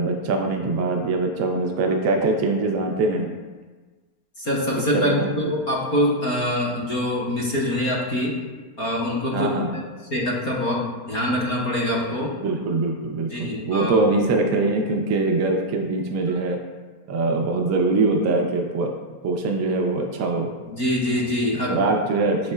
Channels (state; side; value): late; right; 4.4 ms